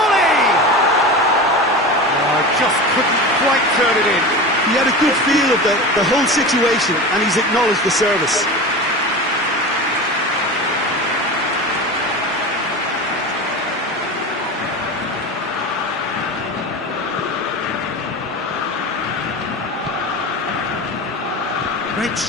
Oh, just couldn't quite turn it in. He had a good feel of the whole situation, and he's acknowledged the service. Great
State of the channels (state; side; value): normal; both; correlation 0.28